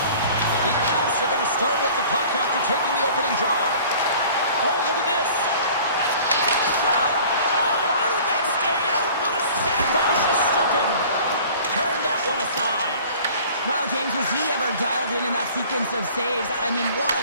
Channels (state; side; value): inverted; both; correlation -0.47